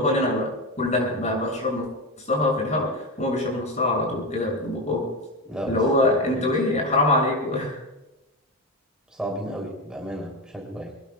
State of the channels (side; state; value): both; normal; correlation 0.16